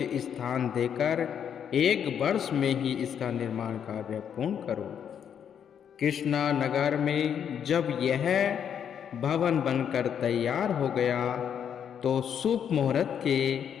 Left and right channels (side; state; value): right; quieter; 8.3 dB